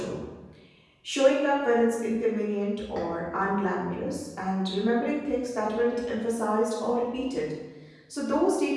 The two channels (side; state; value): both; identical; correlation 1.00